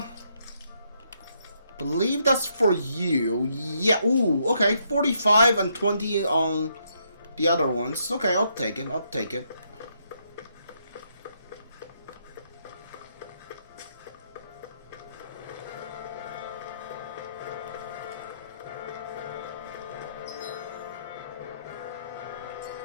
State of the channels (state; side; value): inverted; both; correlation -0.75